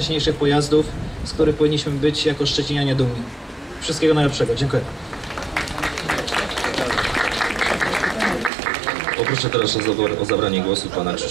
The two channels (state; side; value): drops out; left; at 8.5 s